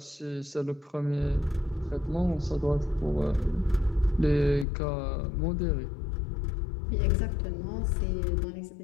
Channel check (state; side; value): drops out; right; at 4.7 s